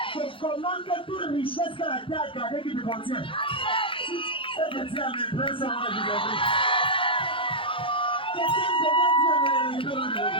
Je commande que toute richesse que la terre a gardée qui te contient. C'est de dire à mes frères, ça va vous aider. Quelqu'un dit à mes frères.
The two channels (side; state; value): right; late; 0.25 ms